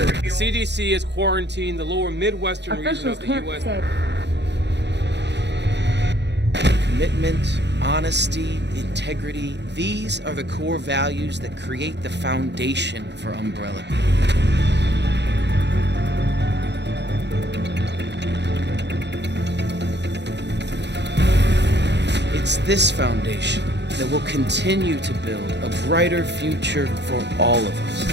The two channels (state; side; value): late; left; 0.50 ms